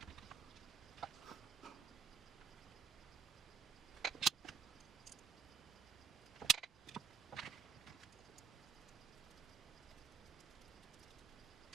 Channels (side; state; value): left; quieter; 7.1 dB